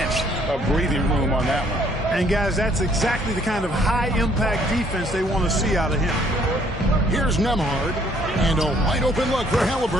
of breathing room on that one. And guys, that's exactly the kind of high-impact defense they want to see out of him. Here's Nembhard. And a wide-open look for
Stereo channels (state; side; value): normal; both; correlation 0.63